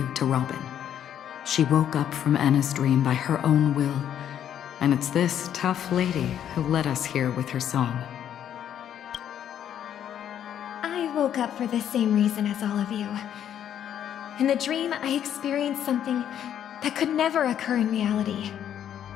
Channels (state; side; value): quieter; right; 9.9 dB